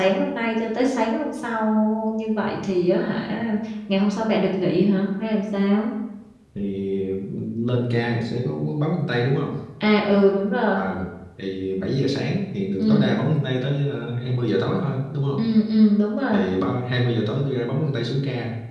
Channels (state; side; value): identical; both; correlation 1.00